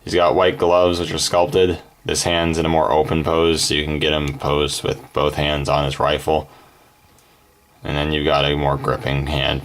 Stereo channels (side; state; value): both; identical; correlation 1.00